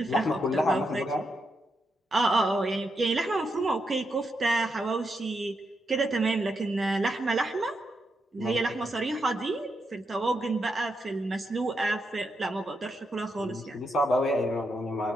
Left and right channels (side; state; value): both; normal; correlation 0.83